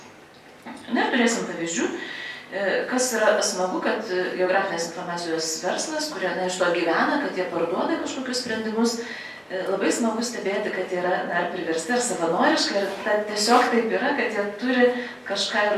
Na ir turėsim pavyzdžių, kas yra smagu, kad geografinės informacijos verslas, kurie iš to gyvena, kad jie parduoda kažkokius sprendimus, labai smagu stebėti, kad jie yra ar priversti, ar savanoriškai, ir tiesiog taip yra, kad jie turi kažką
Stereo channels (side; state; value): both; identical; correlation 1.00